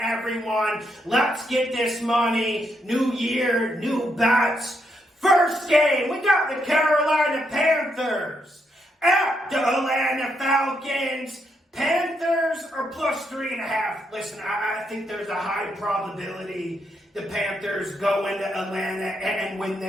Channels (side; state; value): both; normal; correlation 0.79